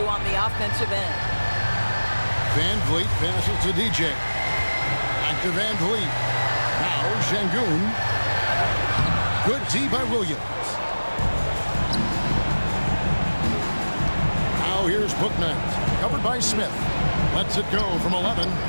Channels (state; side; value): inverted; both; correlation -1.00